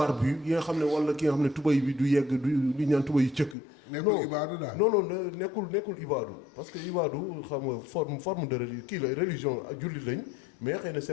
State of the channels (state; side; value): drops out; right; at 3.6 s